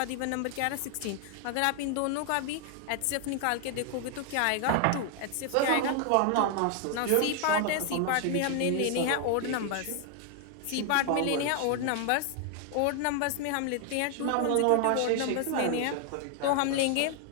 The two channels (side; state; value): both; different; correlation 0.00